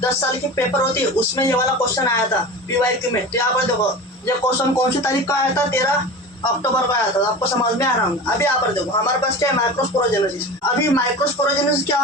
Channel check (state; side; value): normal; both; correlation 0.32